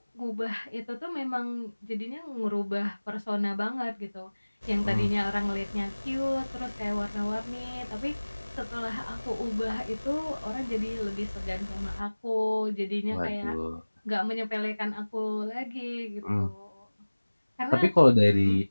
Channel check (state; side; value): inverted; both; correlation -1.00